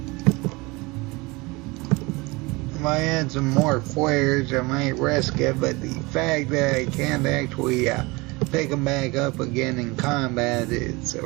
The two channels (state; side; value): quieter; left; 24.4 dB